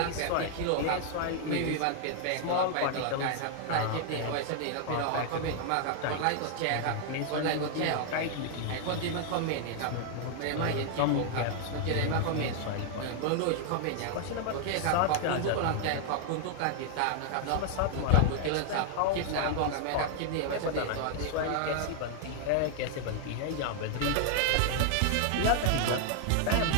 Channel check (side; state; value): both; different; correlation 0.00